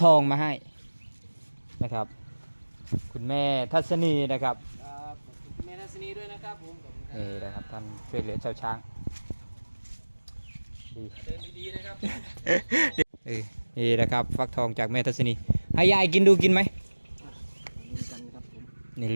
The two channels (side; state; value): both; inverted; correlation -1.00